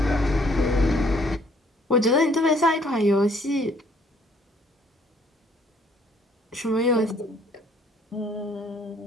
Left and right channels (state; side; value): normal; both; correlation 0.62